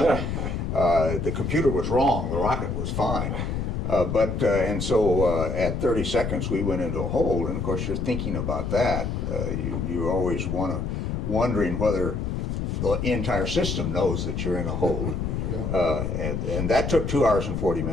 The computer was wrong, the rocket was fine. And so at 30 seconds we went into a hold, and of course you're thinking about that. You always wondering whether the entire system knows that you're in a hold. And that took 2 hours and 40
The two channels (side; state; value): left; noise; rumble, 2 dB below the sound